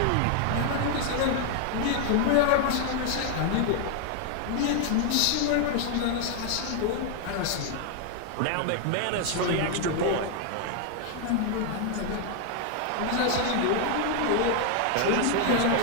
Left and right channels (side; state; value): both; different; correlation 0.00